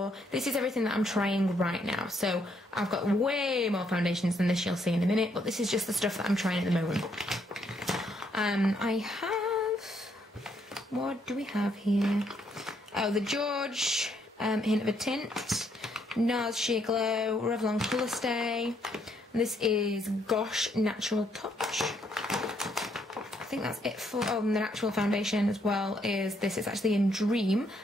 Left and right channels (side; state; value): both; normal; correlation 0.72